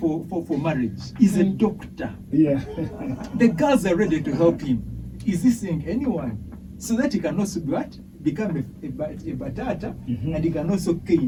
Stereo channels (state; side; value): identical; both; correlation 1.00